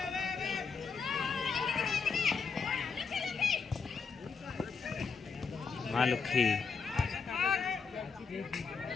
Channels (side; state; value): right; quieter; 5.3 dB